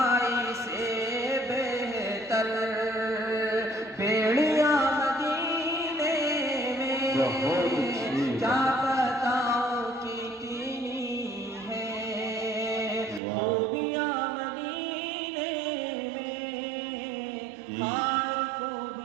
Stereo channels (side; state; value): left; drops out; at 13.2 s